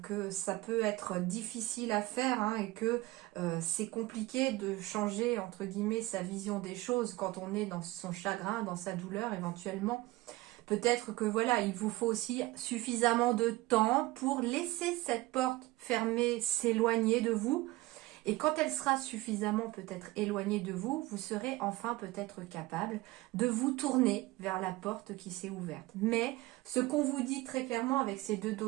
que ça peut être difficile à faire hein, et que c'est compliqué de changer entre guillemets sa vision des choses quand on est dans son chagrin, dans sa douleur éventuellement. Peut-être que voilà, il vous faut aussi suffisamment de temps pour laisser cette porte fermée s'éloigner de vous. Et quand elle sera suffisamment peut-être éloignée de vous, vous serez enfin peut-être capable de vous tourner vers la porte qui s'est ouverte. Mais ce qu'on vous dit très clairement avec ces deux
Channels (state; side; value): quieter; left; 19.5 dB